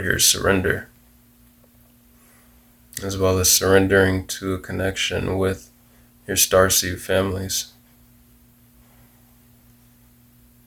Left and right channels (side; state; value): both; identical; correlation 1.00